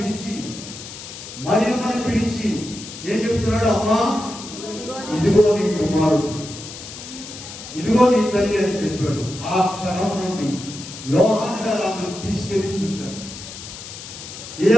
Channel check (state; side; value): noise; left; hiss, 12 dB below the sound